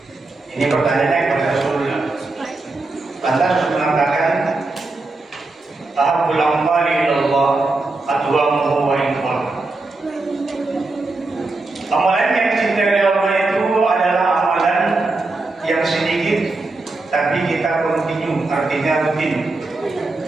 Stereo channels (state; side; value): quieter; left; 3.3 dB